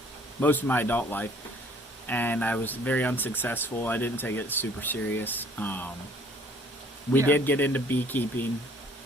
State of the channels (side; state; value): both; normal; correlation 0.57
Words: most of my adult life, and I was very unsuccessful. I didn't take it super serious. We did get into beekeeping